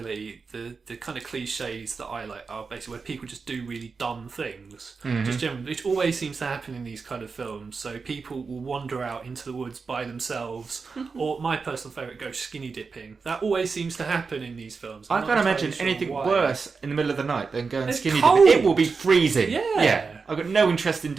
the kind of cliches that I like are basically where people just do really dumb things. Just generally, which always seems to happen in these kind of films. So people will wander out into the woods by themselves, or my personal favourite, go skinny dipping. That always seems to happen in these films. I I'm can't not imagine entirely sure anything why. worse in the middle of the night than going It's skinny cold. dipping. It will be freezing. Yeah. I've got no interest in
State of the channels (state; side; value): quieter; left; 4.8 dB